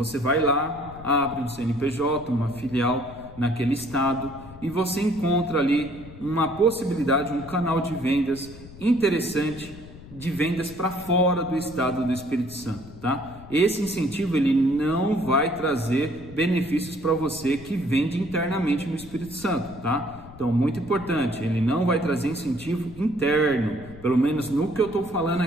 vai lá, abre um CNPJ, uma filial naquele estado e você encontra ali uma possibilidade, um canal de vendas interessante, de vendas para fora do estado do Espírito Santo, tá? Esse incentivo ele não vai trazer benefícios para você que vende internamente no Espírito Santo, tá? Então, muito importante, ele não vai trazer incentivo interno, pelo menos no que eu estou falando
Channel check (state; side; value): noise; left; rumble, 17 dB below the sound